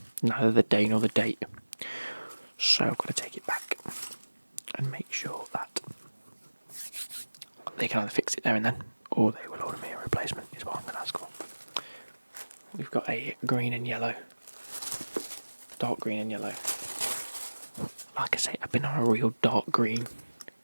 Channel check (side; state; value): both; inverted; correlation -1.00